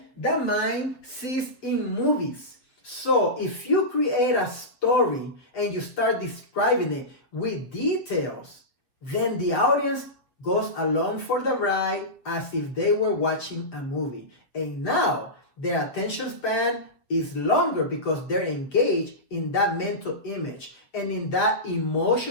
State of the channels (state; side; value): late; right; 7.5 ms